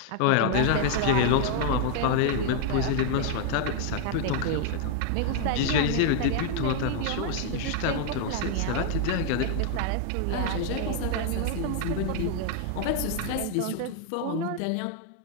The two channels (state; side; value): different; both; correlation 0.00